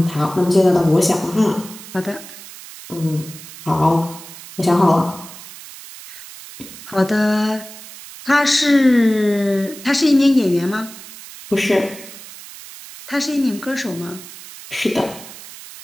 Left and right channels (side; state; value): right; noise; hiss, 16 dB below the sound